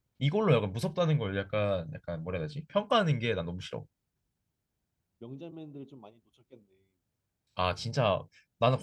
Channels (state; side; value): identical; both; correlation 1.00